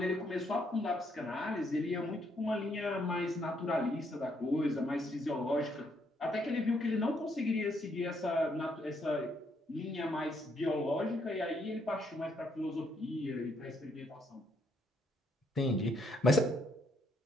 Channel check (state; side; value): normal; both; correlation 0.73